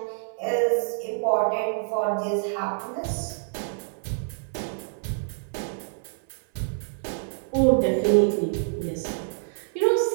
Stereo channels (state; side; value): silent; left; 57 dB below the other